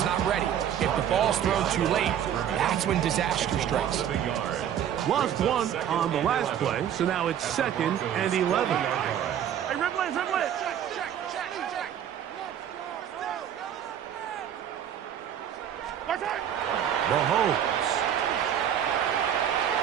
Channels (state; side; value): quieter; left; 9.7 dB